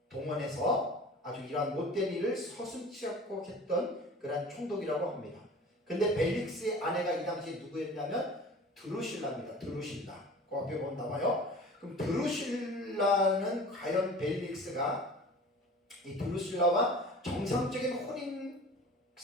동원해서 아주 이러한 못된 일을 서슴지 않고 했던 그러한 총독이라고 합니다. 근데 벨릭스의 아내가 이 당시에 누구였냐면 드루실라입니다. 드루실라. 그 앞에 보면 나와요. 그럼 드루실라는 과연 벨릭스가 이 드루실라와 정상적인 혼인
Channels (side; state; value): both; normal; correlation 0.41